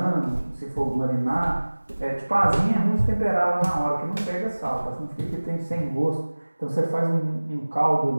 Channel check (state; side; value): inverted; both; correlation -1.00